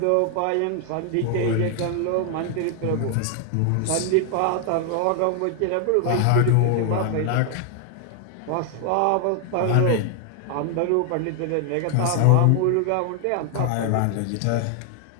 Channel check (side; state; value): both; different; correlation 0.00